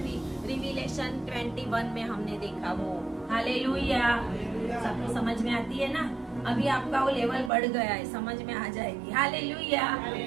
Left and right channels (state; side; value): drops out; left; at 7.5 s